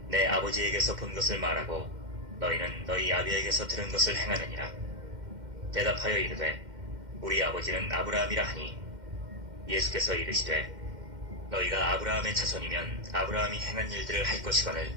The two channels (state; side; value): late; left; 2.1 ms